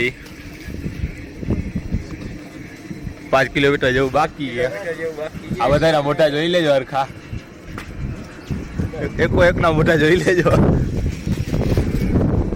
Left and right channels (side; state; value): both; identical; correlation 1.00